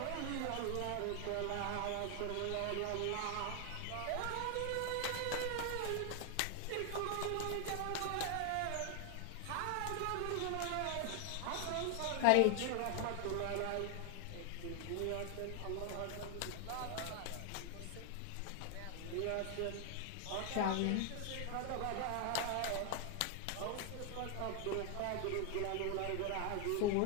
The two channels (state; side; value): different; both; correlation 0.00